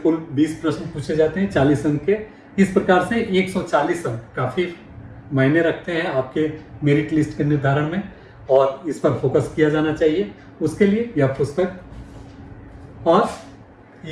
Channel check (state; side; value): identical; both; correlation 1.00